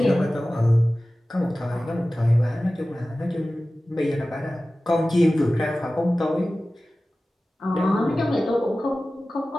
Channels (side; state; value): both; normal; correlation 0.96